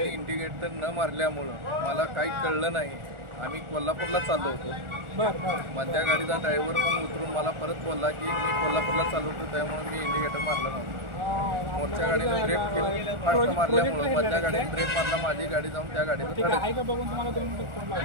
इंडिकेटर न मारल्यामुळं मला काही कळलं नाही। आम्ही कोल्हापूरला चाललो होतो। मधल्या गाडीचा ड्रायव्हर पण उतरून मला परत बोलला की मी कोल्हापूरला चाललो होतो, त्यामुळे मी इंडिकेटर मारला नव्हता। मोठ्या गाडीने ब्रेक केलं, फास्ट मारल्यामुळं मधल्या गाडीने ब्रेक मारला, माझी गाडी जाऊन त्या गाडीला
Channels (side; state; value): left; late; 1.4 ms